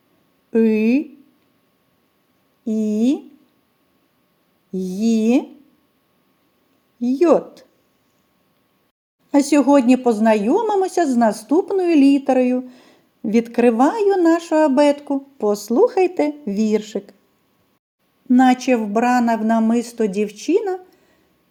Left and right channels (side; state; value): both; identical; correlation 1.00